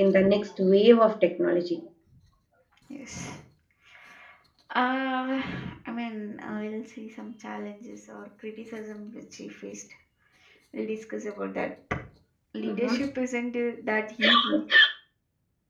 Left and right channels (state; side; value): identical; both; correlation 1.00